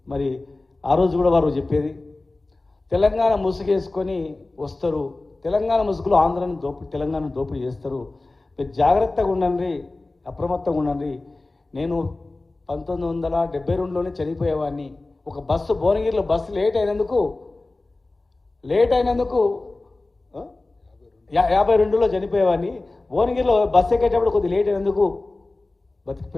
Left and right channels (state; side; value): quieter; right; 3.1 dB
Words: మరి ఆ రోజు కూడా వారు చెప్పేది, తెలంగాణ ముసుగేసుకొని వస్తారు, తెలంగాణ ముసుగులో ఆంధ్రాను తెలంగాణ దోపిడీ చేస్తారు, మీరు జాగ్రత్తగా ఉండండి, అప్రమత్తంగా ఉండండి. నేను 1972లోనే చనిపోయేవాడిని. ఒక బస్సు భువనగిరిలో బస్సు లేట్ అయినందుకు 52లో చనిపోయేవాడిని. భువనగిరిలో బస్సు ఎక్కేటప్పుడు కొద్దిగా లేట్ అయినందుకు